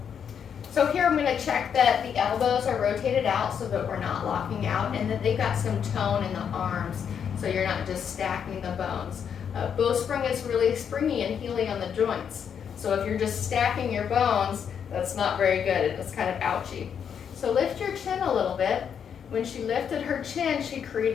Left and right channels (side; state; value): right; quieter; 7.7 dB